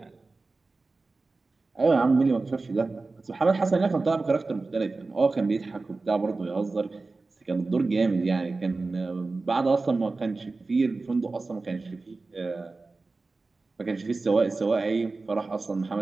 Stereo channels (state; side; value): quieter; left; 3.7 dB